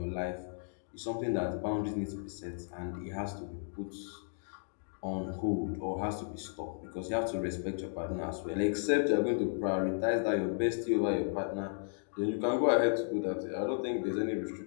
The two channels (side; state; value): right; silent; digital silence